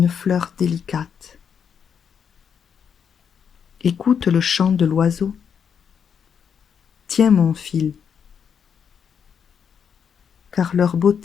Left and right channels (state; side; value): quieter; right; 7.3 dB